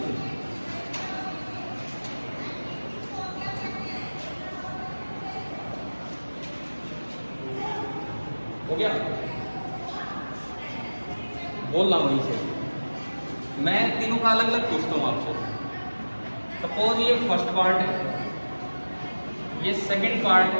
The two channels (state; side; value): inverted; both; correlation -1.00